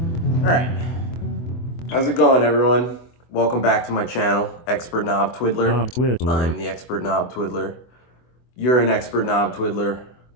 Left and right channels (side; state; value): right; late; 24 ms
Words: Alright, how's it going, everyone? Welcome back to my channel, Expert Knob Twiddler. I'm the Expert Knob Twiddler. You're an Expert Knob Twiddler.